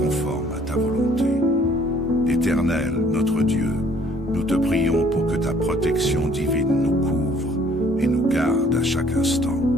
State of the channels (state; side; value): normal; both; correlation 0.59